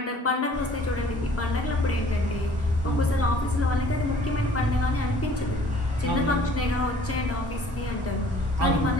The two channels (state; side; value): normal; both; correlation 0.54